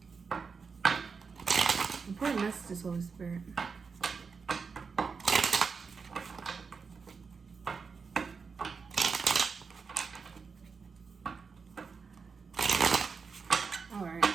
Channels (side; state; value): left; quieter; 5.3 dB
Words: Important messages, Holy Spirit. All right.